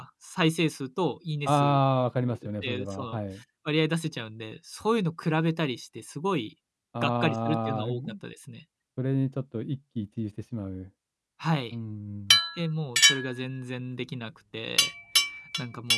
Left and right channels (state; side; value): identical; both; correlation 1.00